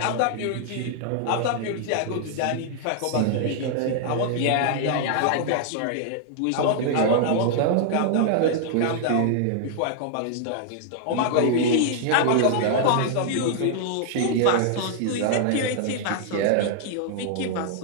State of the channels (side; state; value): both; different; correlation -0.01